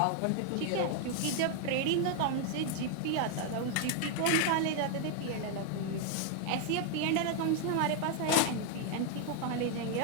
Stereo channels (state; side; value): different; both; correlation 0.00